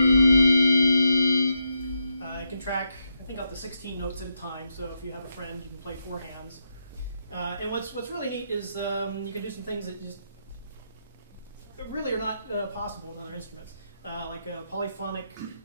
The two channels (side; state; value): both; inverted; correlation -0.82